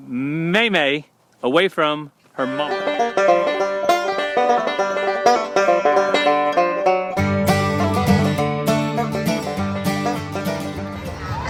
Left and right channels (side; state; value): both; identical; correlation 1.00